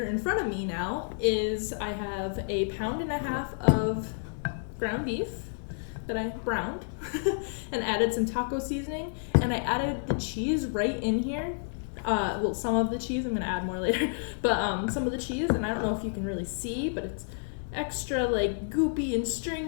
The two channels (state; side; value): silent; right; digital silence